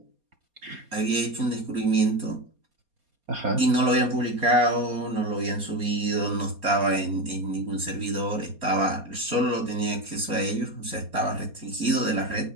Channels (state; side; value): late; left; 4.2 ms